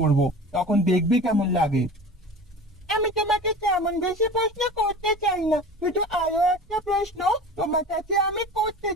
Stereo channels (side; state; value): both; normal; correlation 0.36